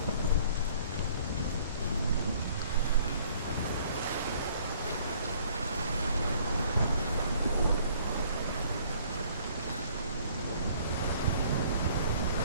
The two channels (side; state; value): both; inverted; correlation -0.58